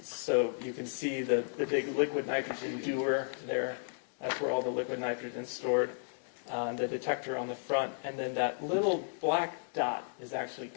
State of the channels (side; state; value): right; silent; digital silence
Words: So you can see the big liquid nitrogen dewar there. That's where all the liquid nitrogen is stored. The detector on the front, and then that little black dot is actually